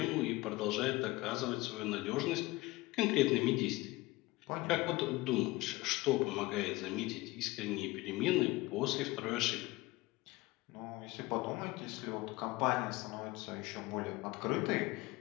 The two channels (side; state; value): right; quieter; 20.8 dB